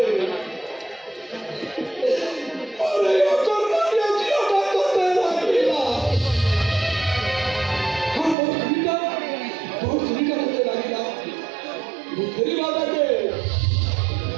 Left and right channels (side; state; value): left; drops out; at 8.3 s